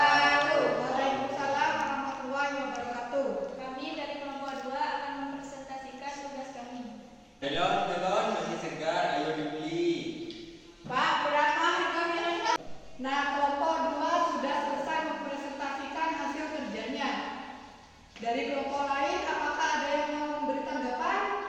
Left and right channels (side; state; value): both; identical; correlation 1.00